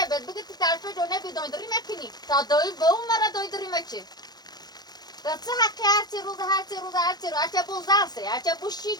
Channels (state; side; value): late; right; 0.19 ms